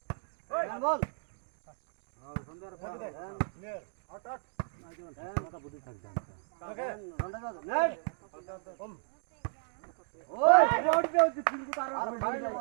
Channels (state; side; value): silent; left; 55 dB below the other